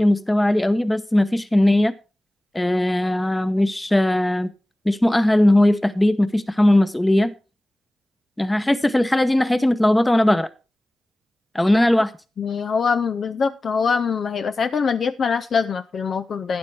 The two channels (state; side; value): normal; both; correlation 0.97